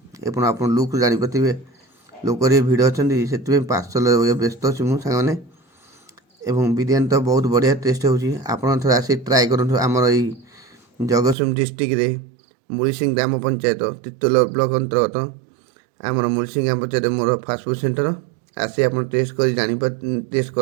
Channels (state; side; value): drops out; left; at 11.4 s